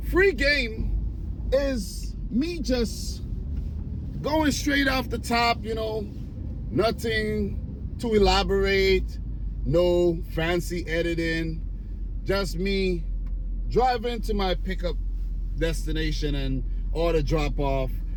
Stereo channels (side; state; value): both; identical; correlation 1.00